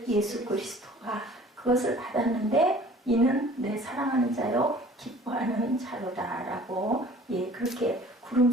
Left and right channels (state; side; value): normal; both; correlation 0.49